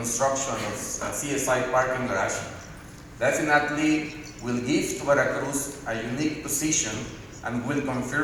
of CSI parking garage definitely will give to Veracruz a unique position and will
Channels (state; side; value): identical; both; correlation 1.00